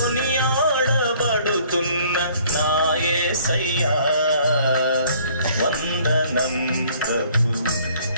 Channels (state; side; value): inverted; both; correlation -0.58